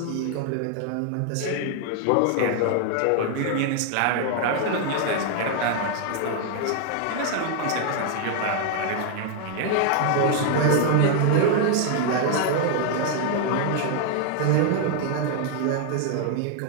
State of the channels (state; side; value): different; both; correlation 0.00